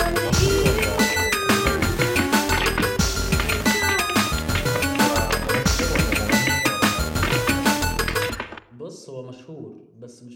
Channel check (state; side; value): identical; both; correlation 1.00